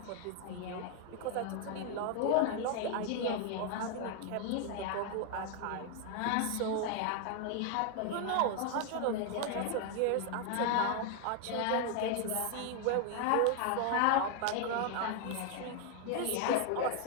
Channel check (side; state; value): both; different; correlation 0.00